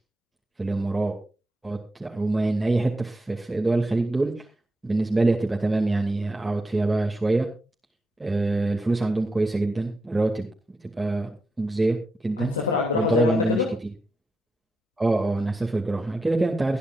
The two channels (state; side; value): normal; both; correlation 0.86